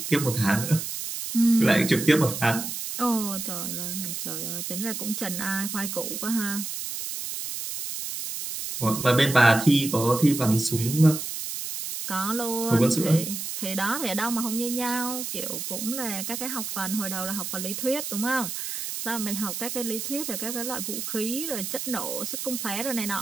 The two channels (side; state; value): right; noise; hiss, 5 dB below the sound